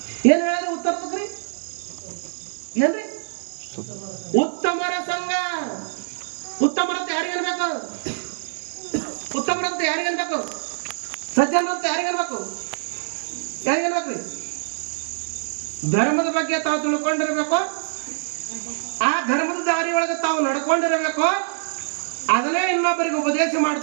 ಏನ್ ಹೇಳಿದ್ರೆ ಉತ್ತರದಕ್ರಿ ಏನ್ರಿ? ಉತ್ತಮರ ಸಂಘ. ಉತ್ತಮರಂತೆ ಯಾರಿಗನ್ಬೇಕು? ಸಜ್ಜನರಂತೆ ಯಾರಿಗನ್ಬೇಕ್ರಿ? ಧರ್ಮದ ಬಗ್ಗೆ ತಾವು ತಿಳ್ಕೊಂಡಿರ್ಬೇಕು. ಆ ಧರ್ಮದ ದಾರಿ ಒಳಗೆ ತಾವು ನಡ್ಕೊಂಡಿರಬೇಕು. ಅದನ್ನೇ ಇನ್ನೊಬ್ಬರಿಗೆ ಉಪದೇಶ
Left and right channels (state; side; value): silent; left; digital silence